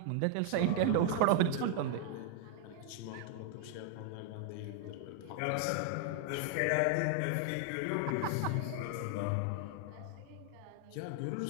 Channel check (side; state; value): both; different; correlation 0.00